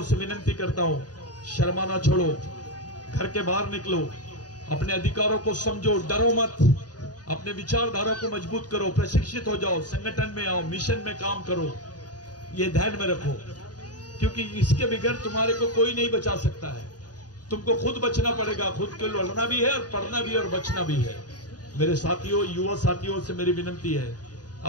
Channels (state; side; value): late; right; 0.68 ms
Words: से विनती करता हूं, शर्माना छोड़ो, घर के बाहर निकलो, अपने अधिकारों को समझो, डरो मत, अपने विचारधारा को मजबूत करो, प्रशिक्षित हो जाओ, संगठन में आओ, मिशन में काम करो। ये ध्यान में रखो, क्योंकि इसके बगैर तुम्हारे को कोई नहीं बचा सकता है। तुमको खुद बचना पड़ेगा, खुद के लड़ना भी है और पढ़ना भी है और बचना भी है। मेरे साथियों, युवा साथियों से मेरी विनती है,